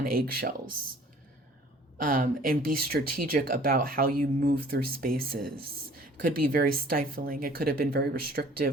eggshells. and be strategic about how you move through spaces. It could be very stifling. It could have been very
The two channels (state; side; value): normal; both; correlation 0.52